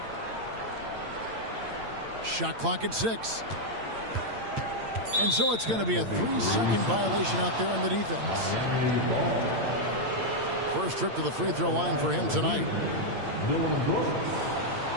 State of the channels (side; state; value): left; late; 8.8 ms